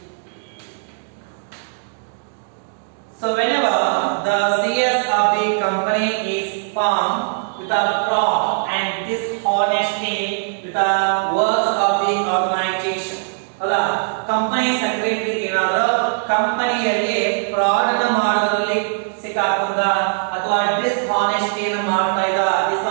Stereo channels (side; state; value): left; silent; digital silence